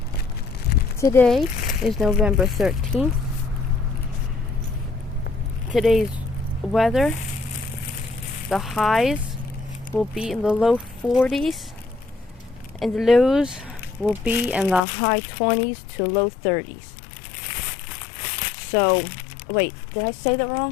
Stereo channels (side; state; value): right; drops out; at 14.8 s